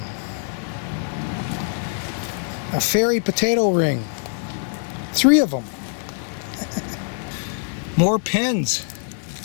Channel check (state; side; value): silent; right; digital silence